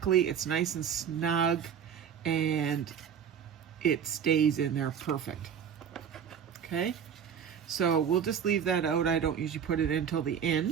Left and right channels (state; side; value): quieter; left; 8.0 dB